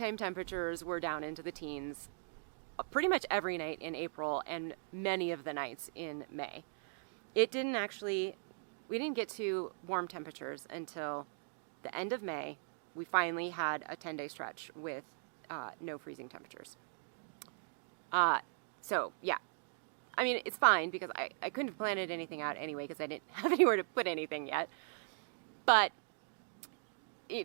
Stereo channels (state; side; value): silent; left; digital silence